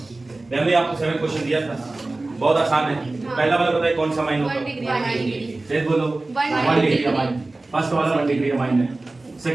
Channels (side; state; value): left; quieter; 3.1 dB